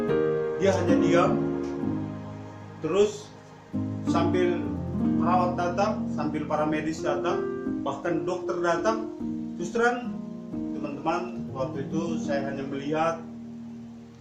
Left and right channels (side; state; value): both; identical; correlation 1.00